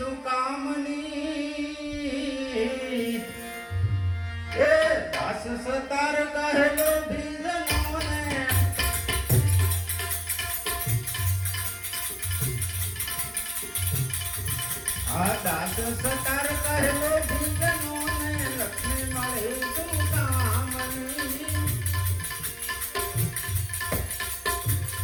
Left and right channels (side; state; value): both; identical; correlation 1.00